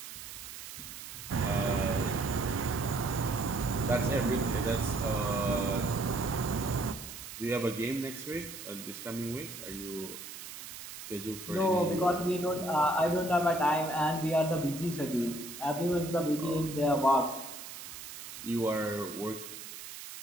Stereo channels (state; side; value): noise; right; hiss, 11 dB below the sound